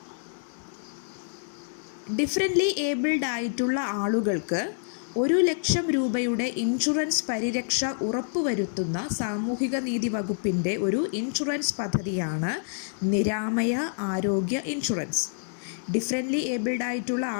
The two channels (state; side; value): silent; right; digital silence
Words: ഡിഫറൻ്റ്ലി ഏബിൾഡ് ആയിട്ടുള്ള ആളുകൾക്ക് 1,00,000 രൂപയുടെ ഇൻഷുറൻസ് പരിരക്ഷ ഉറപ്പുവരുത്തുന്ന സാമൂഹിക നീതി വകുപ്പിൻ്റെ ഒരു ഇൻഷുറൻസ് പദ്ധതിയാണ് നിരാമയ ആരോഗ്യ ഇൻഷുറൻസ്. ഡിഫറൻ്റ്ലി ഏബിൾഡ് ആയിട്ടുള്ള